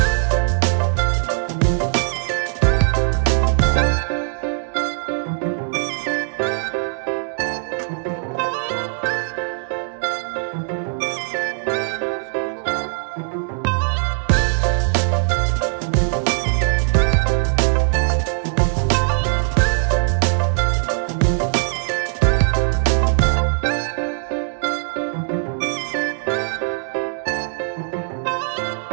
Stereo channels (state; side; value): silent; left; 55 dB below the other